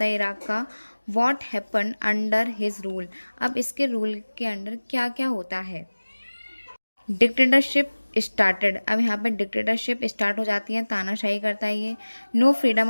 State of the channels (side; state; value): both; inverted; correlation -1.00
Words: है इराक का. What happen under his rule. अब इसके रूल के अंडर क्या क्या होता है. Dictatorship started. अब यहाँ पर डिक्टेटरशिप स्टार्ट हो जाती है. तानाशाही करता है ये. No freedom